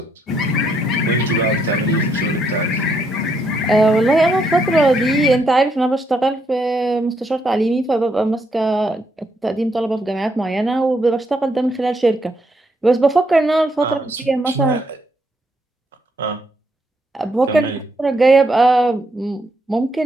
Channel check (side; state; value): both; normal; correlation 0.75